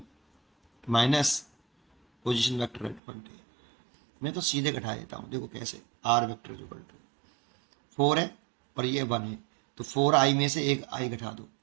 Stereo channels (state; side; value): drops out; left; at 3.0 s